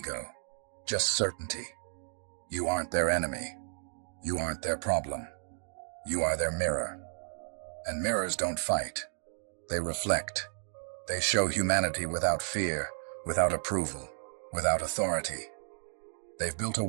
just certainty. You aren't their enemy. You aren't their problem. You are their mirror. And mirrors don't fight. They reflect. They show humanity without fear, without approval, without authority. They've built a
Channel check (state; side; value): silent; left; digital silence